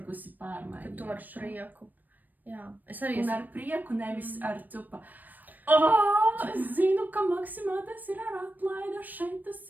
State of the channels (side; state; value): left; late; 0.087 ms